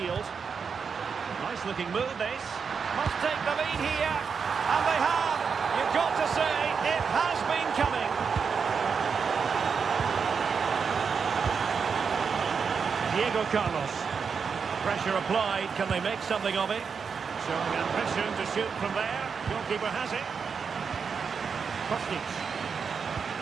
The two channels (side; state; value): left; quieter; 6.0 dB